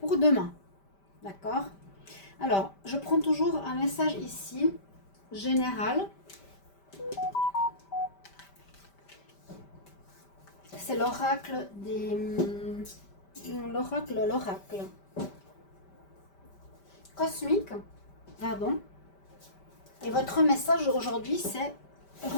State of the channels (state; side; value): late; right; 5.1 ms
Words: pour demain. D'accord? Alors, je prends toujours un message ici, général. C'est l'oracle des... L'oracle cosmique, pardon. Et votre message aujourd'hui, c'est